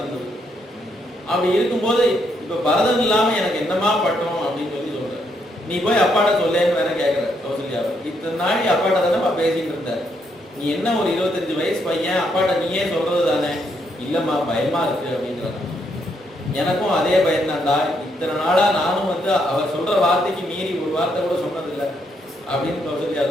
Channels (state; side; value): normal; both; correlation 0.75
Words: அப்படி இருக்கும்போது இப்ப பரதன் இல்லாம எனக்கு என்னமா பட்டம் அப்படின்னு சொல்ற, நீ போய் அப்பாட்ட சொல்லேன்னு வேற கேட்கிற கௌசல்யாவை. இத்தனை நாள் அப்பாட்ட தானே பேசிட்டு இருந்த, நீ என்ன ஒரு 25 வயசு பையன், அப்பாட்ட நீயே சொல்றது தானே. இல்லம்மா பயமா இருக்கு அப்படிங்கிறத. எனக்கும் அதே பயன்தான்டா, இத்தனை நாளா நானும் அவர் சொல்ற வார்த்தைக்கு மீறி ஒரு வார்த்தை கூட சொன்னதில்லை அப்படின்னு கௌசல்யா